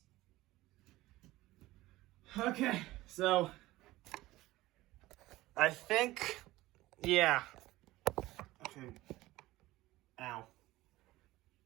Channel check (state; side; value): quieter; left; 17.8 dB